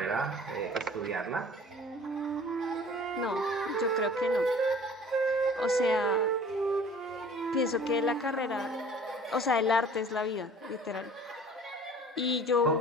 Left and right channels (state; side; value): normal; both; correlation 0.49